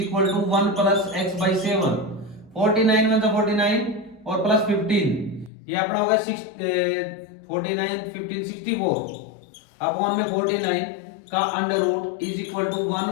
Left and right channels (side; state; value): right; drops out; at 5.5 s